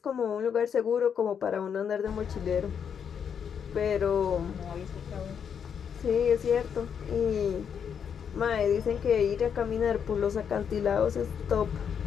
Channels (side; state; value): right; quieter; 7.5 dB